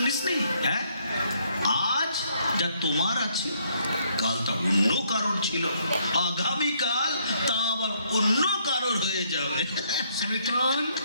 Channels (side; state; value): both; inverted; correlation -0.69